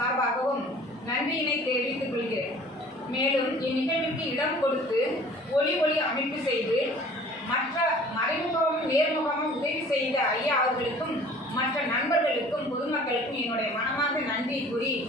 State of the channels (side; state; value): both; normal; correlation 0.49